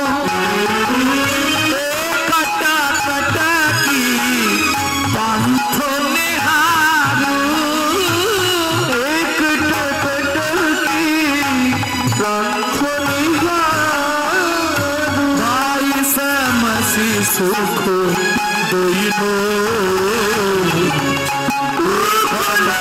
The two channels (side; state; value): both; identical; correlation 1.00